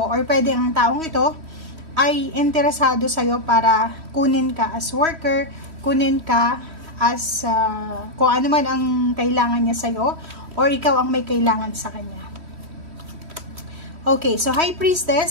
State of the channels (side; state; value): left; late; 3.1 ms